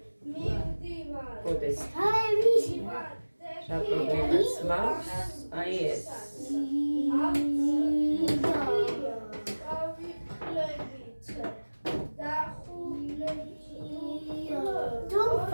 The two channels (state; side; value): inverted; both; correlation -1.00